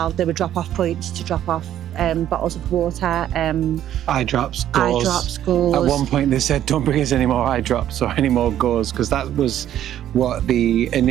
There were drop-off points to drop off bottles of water. Eye drops, gauze. At one point they said, don't bring us any more eye drops or any more gauze, because that was what the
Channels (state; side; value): quieter; left; 11.5 dB